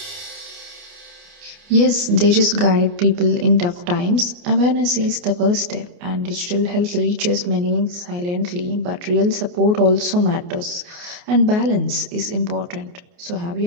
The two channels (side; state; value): left; late; 28 ms